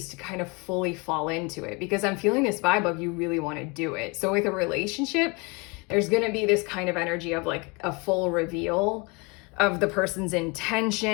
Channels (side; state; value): right; quieter; 28.7 dB